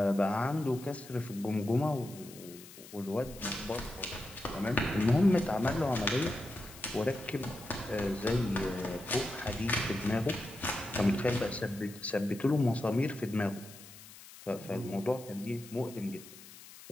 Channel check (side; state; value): left; noise; hiss, 18 dB below the sound